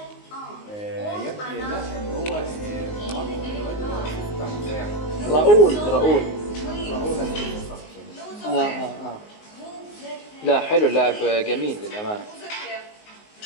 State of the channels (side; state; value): right; late; 19 ms